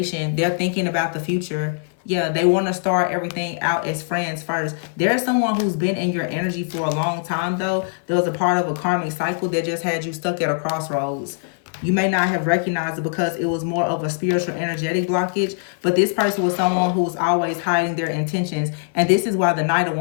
they're thinking about the future. Yeah, they want to start everything out as friends first. There's someone who's been in your energy for a long time, though. There was a part of a karmic cycle that just had you stuck at a crossroads. You may not have recognized it because it was more of a spiritual energetic blockage, but this person was someone who was always hiding their intentions. And this is why the Knight of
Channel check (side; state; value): right; silent; 56 dB below the other